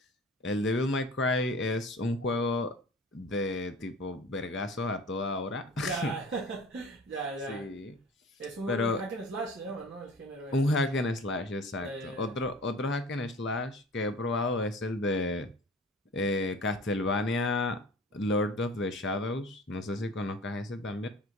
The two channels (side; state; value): both; normal; correlation 0.42